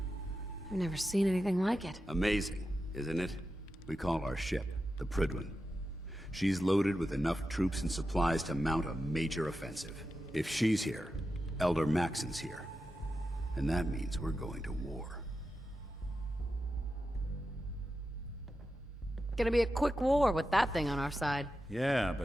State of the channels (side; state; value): both; normal; correlation 0.90